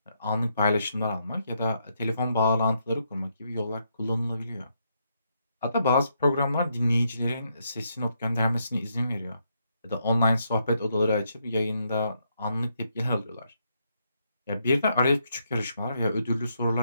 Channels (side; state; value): both; inverted; correlation -0.77